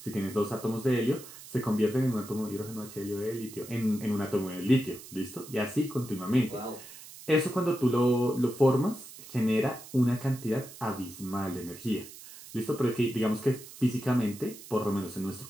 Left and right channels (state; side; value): noise; right; hiss, 16 dB below the sound